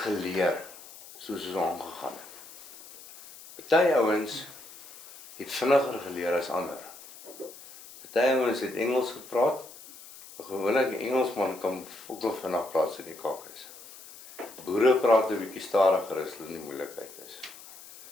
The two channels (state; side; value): noise; left; hiss, 18 dB below the sound